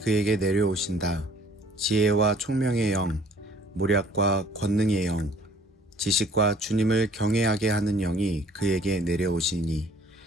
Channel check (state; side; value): normal; both; correlation 0.56